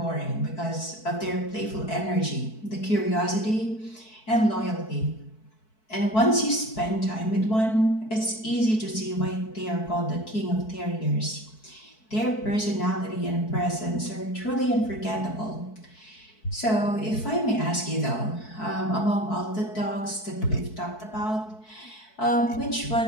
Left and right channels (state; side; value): late; right; 4.6 ms